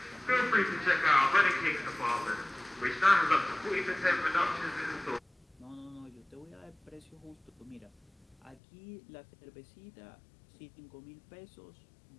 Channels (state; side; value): drops out; right; at 8.6 s